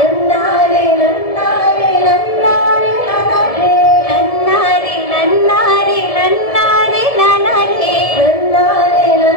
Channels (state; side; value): late; right; 1.7 ms